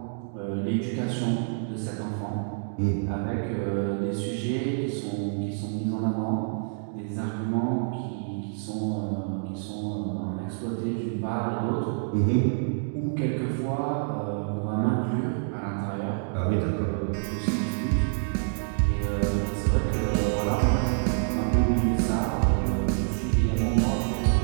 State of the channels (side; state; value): left; silent; digital silence